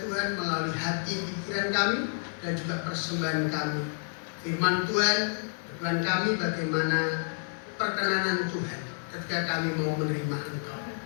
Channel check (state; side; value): silent; right; 58 dB below the other